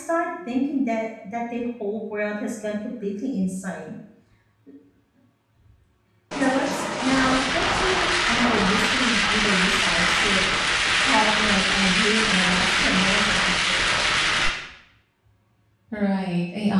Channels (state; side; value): identical; both; correlation 1.00